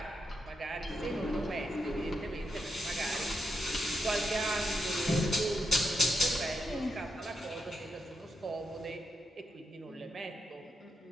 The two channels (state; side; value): normal; both; correlation 0.84